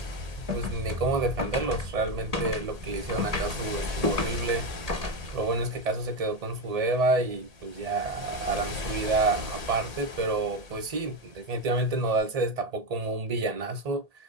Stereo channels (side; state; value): left; late; 1.8 ms